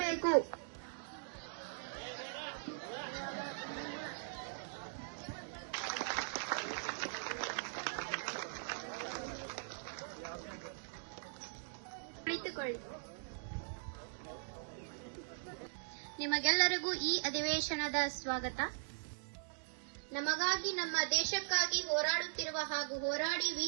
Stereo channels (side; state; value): left; silent; digital silence